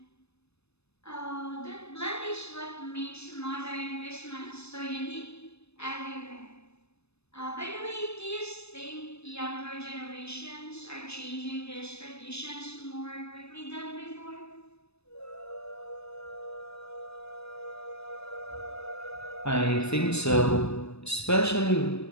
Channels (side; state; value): right; late; 0.79 ms